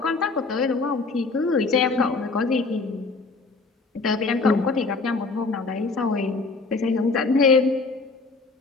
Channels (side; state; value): right; quieter; 3.9 dB